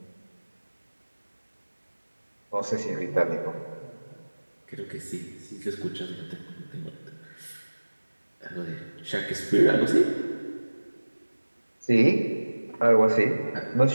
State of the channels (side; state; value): both; inverted; correlation -1.00